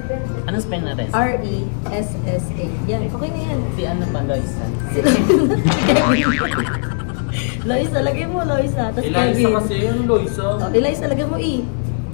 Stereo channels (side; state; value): right; silent; digital silence